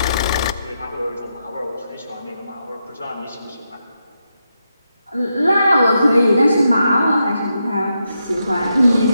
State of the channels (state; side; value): inverted; both; correlation -0.84